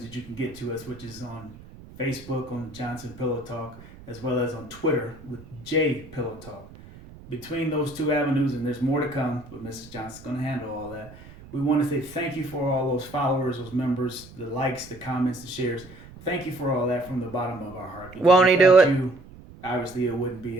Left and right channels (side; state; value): right; noise; rumble, 19 dB below the sound